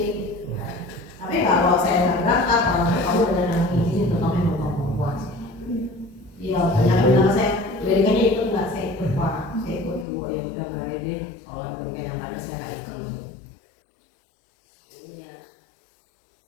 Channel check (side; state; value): right; drops out; at 10.1 s